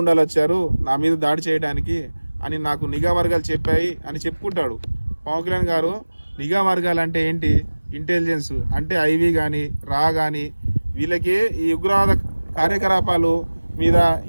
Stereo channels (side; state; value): both; inverted; correlation -1.00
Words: వచ్చారు నా మీద దాడి చేయడానికి అని నాకు నిఘా వర్గాలు చెప్పాయి అని చెప్పుకుంటాడు. పవన్ కళ్యాణ్ గారు నిఘా వర్గాలు అంటే ఏంటి? ఇంటెలిజెన్స్ అంటే ఐవి కానీ రా కానీ వీళ్ళకి ఈ ఉగ్రవాద కార్యకలాపాలు మీద